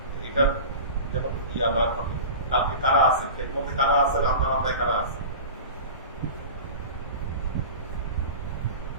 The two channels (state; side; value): inverted; both; correlation -0.34